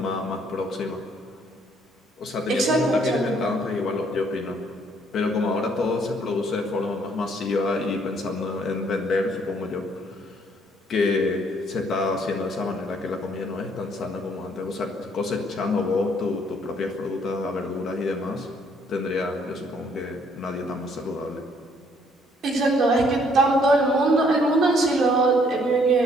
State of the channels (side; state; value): both; normal; correlation 0.65